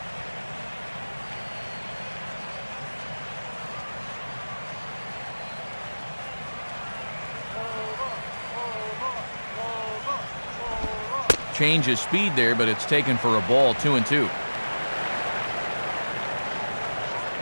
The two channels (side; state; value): both; inverted; correlation -1.00